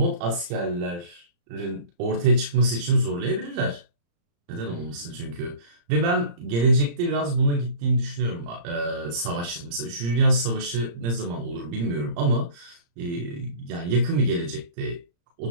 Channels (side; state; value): left; late; 35 ms